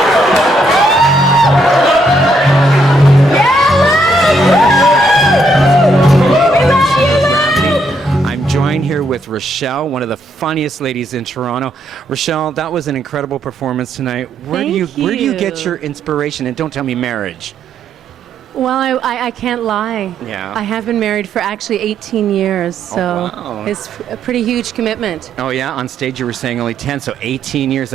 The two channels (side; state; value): both; normal; correlation 0.74